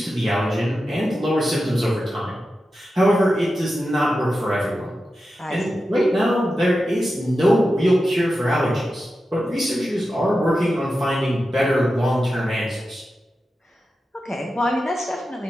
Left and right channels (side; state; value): both; normal; correlation 0.91